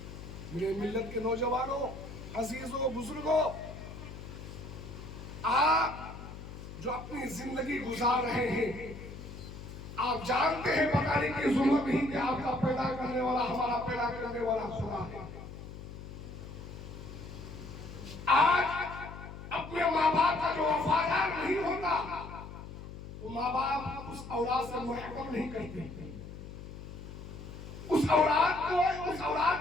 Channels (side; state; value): left; noise; hum, 12 dB below the sound